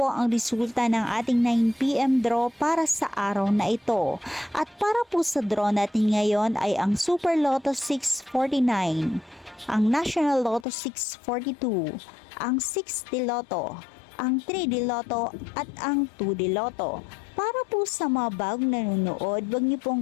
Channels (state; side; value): drops out; right; at 10.7 s